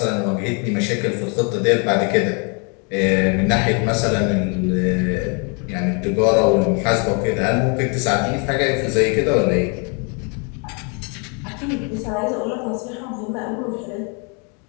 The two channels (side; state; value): right; quieter; 35.3 dB